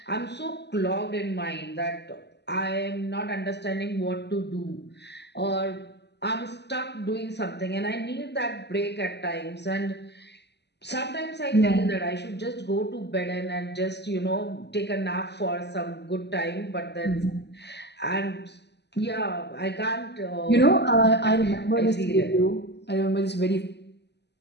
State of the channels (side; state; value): right; late; 0.50 ms